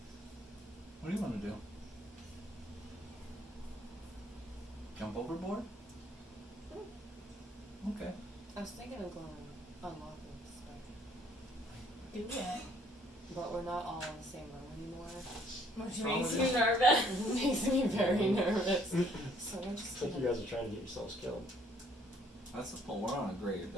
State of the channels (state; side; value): normal; both; correlation 0.63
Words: What do you wanna do? Jump overboard? Okay. I was thinking of going unlocking the spider. Do it. But we're not all in the same room anymore. Which wrong makes with you nervous. It makes me very nervous. So we're It's just like you gonna... guys are trying to get yourselves killed. That's the point. We're on a great